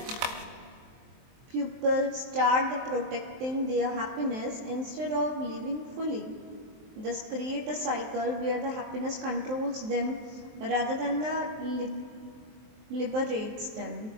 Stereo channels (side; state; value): left; late; 23 ms